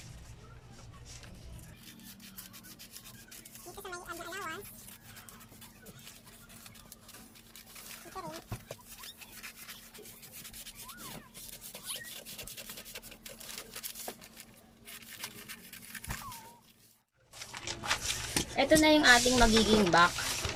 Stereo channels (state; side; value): identical; both; correlation 1.00